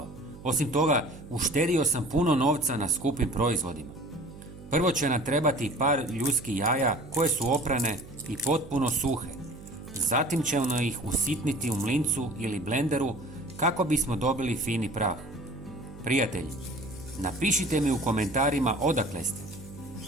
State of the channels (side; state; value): right; noise; hum, 17 dB below the sound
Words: Osim toga, uštedio sam puno novca na skupim proizvodima. Prvo će nam trebati par ljudskih jaja koje su oprane i potpuno suhe. Zatim ćemo ih usitniti u mlincu ili blenderu kako bismo dobili fini prah. Prijatelji, napišite mi u komentarima odakle ste.